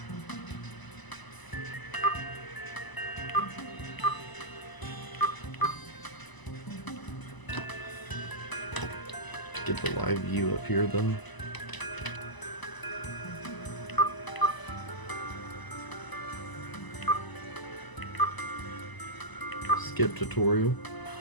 Get the live view up here though. Skip tutorial.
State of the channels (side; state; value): right; late; 1.0 ms